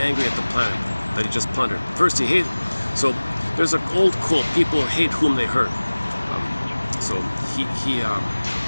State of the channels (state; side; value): inverted; both; correlation -1.00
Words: at the planet that he just plundered. First he hated, so there's an old quote, people hate whom they hurt. So he